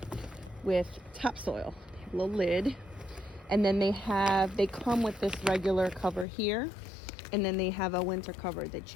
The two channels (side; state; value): right; drops out; at 6.2 s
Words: with topsoil, a little lid, and then they come with this regular cover here, and then they have a winter cover that